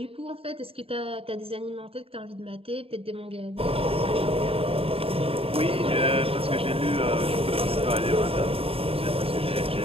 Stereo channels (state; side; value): late; left; 0.27 ms